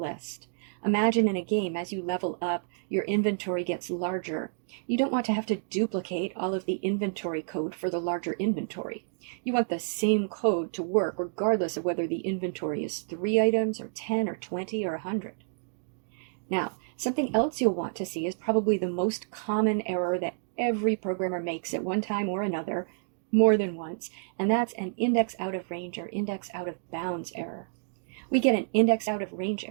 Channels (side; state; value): left; silent; digital silence